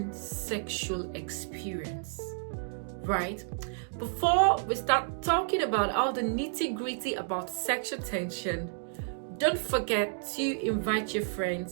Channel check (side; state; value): left; silent; digital silence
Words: sexual experience, right? Before we start talking about all the nitty-gritty about sexual tension, don't forget to invite your